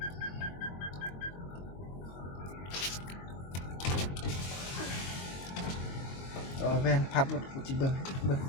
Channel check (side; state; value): right; late; 22 ms